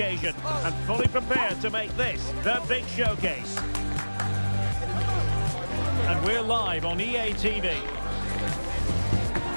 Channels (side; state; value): both; inverted; correlation -1.00